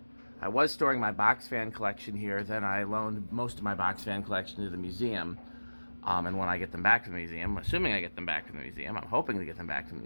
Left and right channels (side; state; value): both; inverted; correlation -1.00